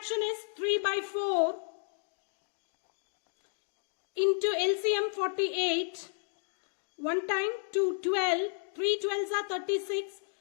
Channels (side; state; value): right; silent; digital silence